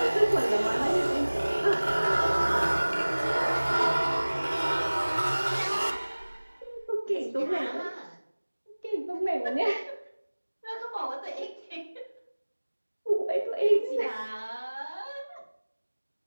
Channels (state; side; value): inverted; both; correlation -1.00